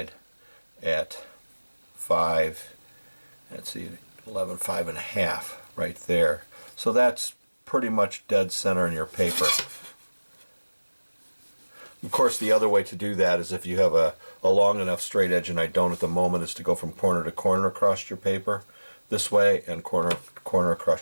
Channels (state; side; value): inverted; both; correlation -1.00